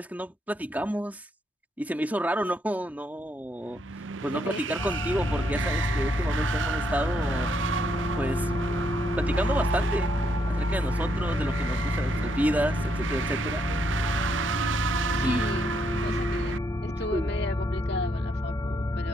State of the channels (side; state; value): both; normal; correlation 0.75